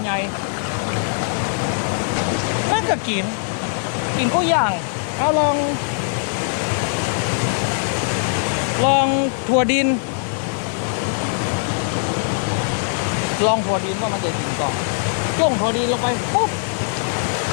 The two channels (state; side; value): silent; right; digital silence